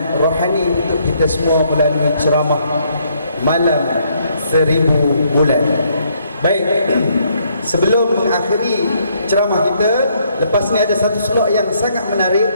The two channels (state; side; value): inverted; both; correlation -0.70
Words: rohani untuk kita semua melalui ceramah malam 1000 bulan. Baik, sebelum mengakhiri ceramah kita, lepas ni ada satu slot yang sangat menarik,